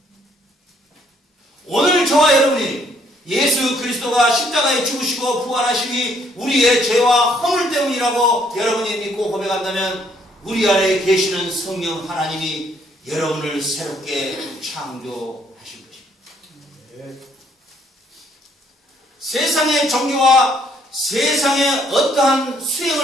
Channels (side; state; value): both; normal; correlation 0.67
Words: 오늘 저와 여러분이 예수 그리스도가 십자가에 죽으시고 부활하심이 우리의 죄와 허물 때문이라고 여러분이 믿고 고백한다면 우리 안에 계시는 성령 하나님이 여러분을 새롭게 창조하신 것입니다. 세상의 종교와 세상의 어떠한